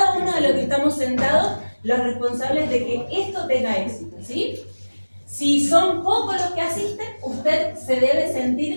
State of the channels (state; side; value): inverted; both; correlation -1.00